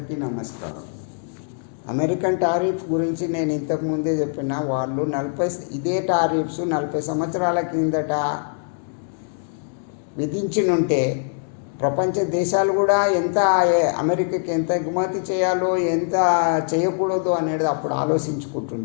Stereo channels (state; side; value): silent; right; digital silence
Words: నమస్కారం. American tariff గురించి నేను ఇంతకుముందే చెప్పిన వాళ్ళు ఇదే టారిఫ్స్ 40 సంవత్సరాల కిందట విధించినుంటే ప్రపంచ దేశాలు కూడా ఎంత అమెరికాకి ఎంత ఎగుమతి చేయాలో ఎంత చేయకూడదు అనేది అప్పుడు